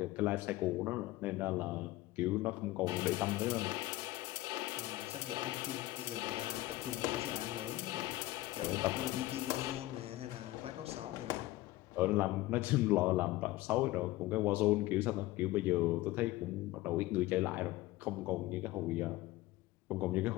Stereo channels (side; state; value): right; quieter; 17.7 dB